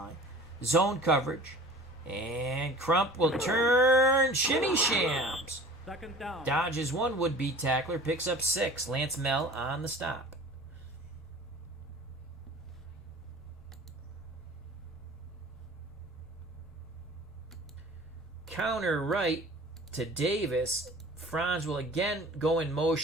Zone coverage. And Crump will turn. Shimmy shams. 2nd down. Dodges one would-be tackler. Picks up 6. Lance Mell on the stop. Counter right to Davis. Franz will again go in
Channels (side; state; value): both; normal; correlation 0.44